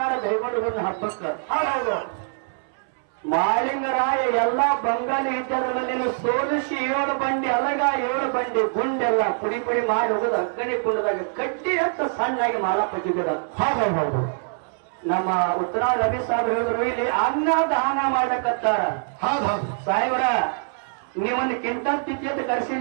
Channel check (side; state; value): left; silent; 63 dB below the other